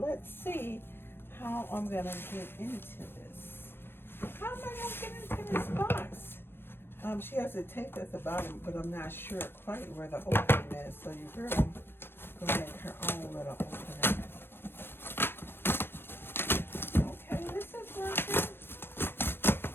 see how I'm gonna get into this. How am I gonna get into this box? She has it taped at the bottom, but I'm not sure quite where the opening is. So you heard me go make her own little opening. Okay, this is working.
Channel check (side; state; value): right; late; 0.11 ms